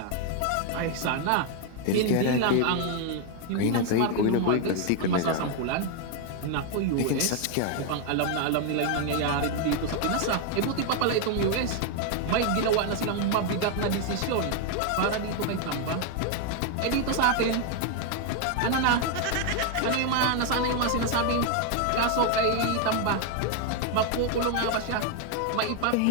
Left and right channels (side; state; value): both; different; correlation 0.01